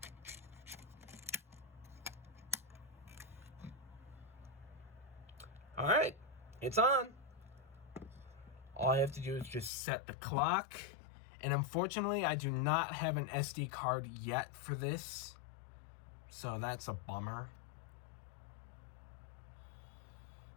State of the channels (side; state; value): right; drops out; at 9.7 s